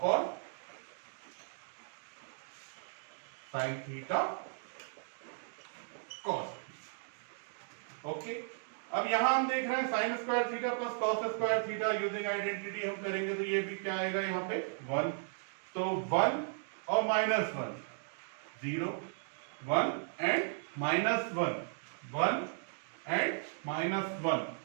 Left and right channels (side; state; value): left; silent; digital silence